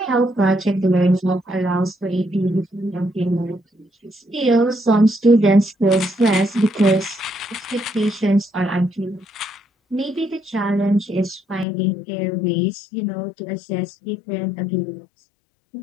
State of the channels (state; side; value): drops out; right; at 11.7 s